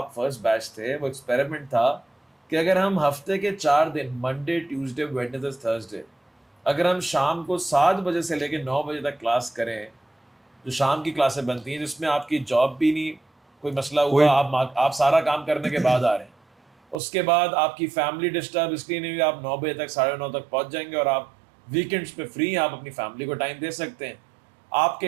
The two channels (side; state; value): left; drops out; at 16.9 s